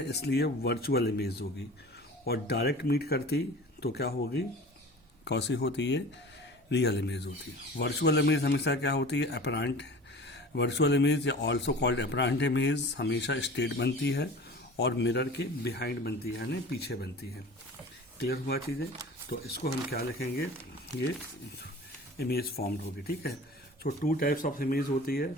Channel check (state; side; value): normal; both; correlation 0.40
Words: इसलिए वर्चुअल इमेज होगी, और डायरेक्ट मीट करती तो क्या होगी, कौन सी होती है, रियल इमेज होती है. वर्चुअल इमेज हमेशा क्या होती है, अपरेंट. वर्चुअल इमेज या ऑल्सो कॉल्ड अपरेंट इमेज हमेशा स्टेट बनती है और मिरर के बिहाइंड बनती है, यानी पीछे बनती है। क्लियर हुआ चीज़ें? तो इसको हम क्या लिखेंगे, ये इमेज फॉर्म्ड होगी, ठीक है। सो टू टाइप्स ऑफ इमेज होती है।